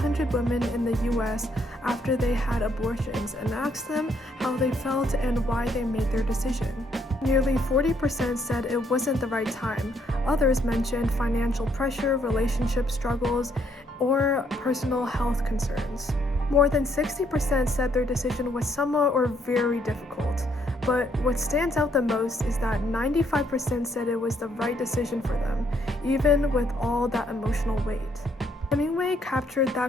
women in the US after they had abortions and asked them how they felt and why they made their decision. Nearly 40% said it wasn't the right time. Others mentioned financial pressure, relationship struggles, or personal health concerns. More than 60% said their decision was somewhat or very difficult. But what stands out the most is that 95% said it was the right decision for them, even with all that emotional weight. Hemingway captured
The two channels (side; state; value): both; normal; correlation 0.70